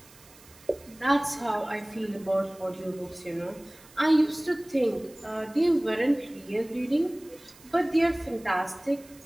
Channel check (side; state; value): right; noise; hiss, 24 dB below the sound